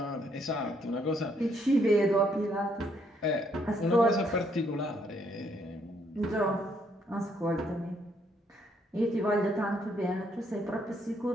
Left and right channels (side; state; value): both; normal; correlation 0.71